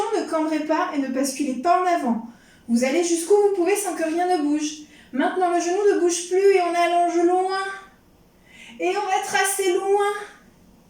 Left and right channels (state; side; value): identical; both; correlation 1.00